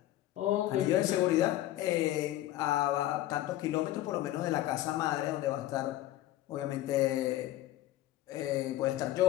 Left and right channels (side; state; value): right; quieter; 14.8 dB